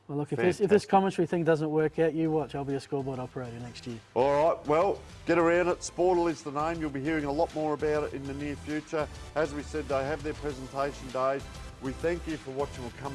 well, look, if this Fantastic. commentary thing doesn't work out, you watch. I'll be a scoreboard operator next year. All right, well, get around it. Sportal is the name. You'll be hearing a lot more about it in the near future. As we said, they have their presentation days. We thank you for watching. We'll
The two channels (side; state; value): both; identical; correlation 1.00